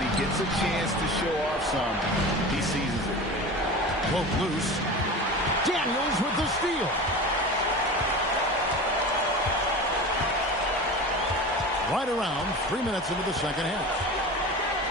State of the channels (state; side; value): normal; both; correlation 0.32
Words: he gets a chance to show off some, he seizes it. Both loose. Daniels with the steal. Right around 3 minutes into the second half.